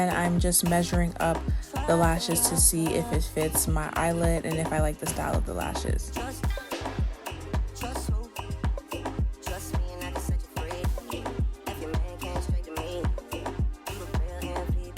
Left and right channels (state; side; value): identical; both; correlation 1.00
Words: I'm just measuring up the lashes to see if it fits my eyelid and if I like the style of the lashes.